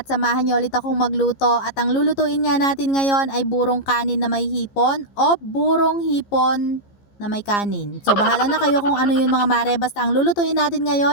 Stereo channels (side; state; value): right; late; 15 ms